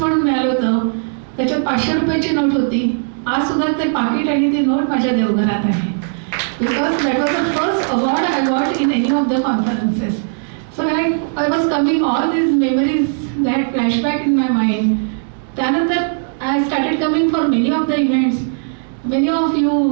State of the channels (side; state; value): left; silent; digital silence